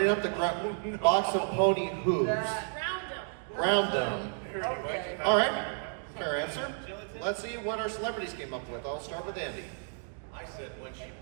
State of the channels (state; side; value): silent; left; 57 dB below the other